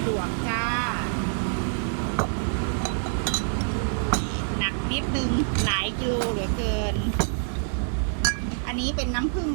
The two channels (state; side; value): silent; left; 61 dB below the other